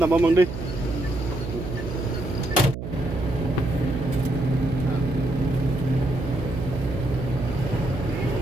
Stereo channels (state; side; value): noise; right; hum, 7 dB below the sound